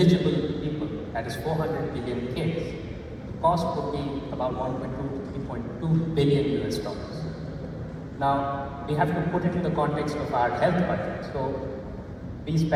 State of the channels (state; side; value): identical; both; correlation 1.00